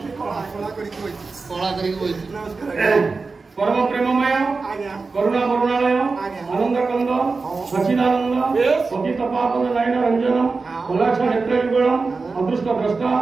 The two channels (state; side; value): quieter; left; 4.2 dB